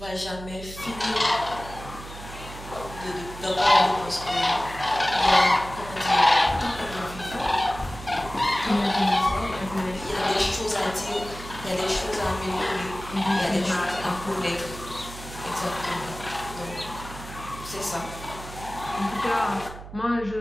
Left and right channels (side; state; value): right; noise; hum, 13 dB below the sound